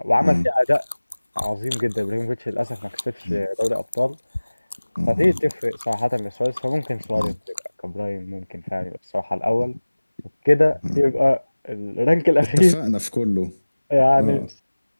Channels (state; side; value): inverted; both; correlation -1.00